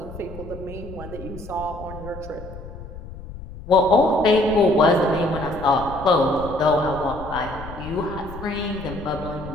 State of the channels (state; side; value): noise; left; rumble, 13 dB below the sound